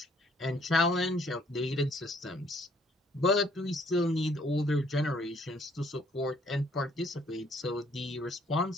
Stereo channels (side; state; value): both; normal; correlation 0.63